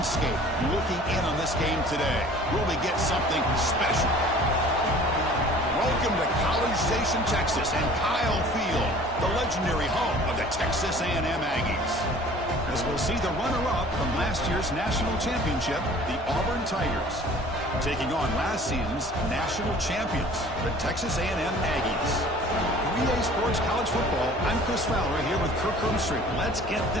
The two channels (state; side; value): normal; both; correlation 0.48